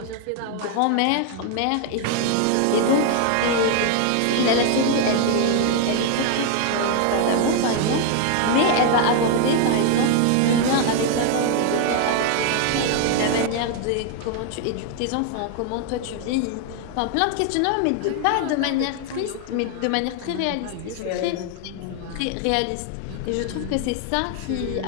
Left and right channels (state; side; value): different; both; correlation 0.01